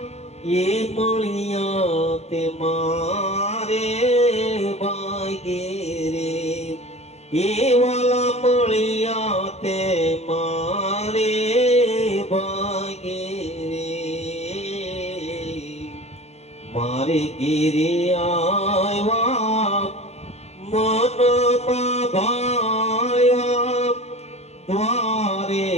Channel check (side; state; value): right; late; 0.31 ms